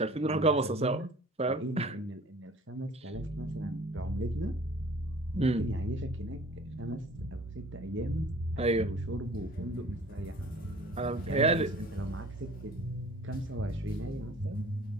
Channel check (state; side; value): normal; both; correlation 0.48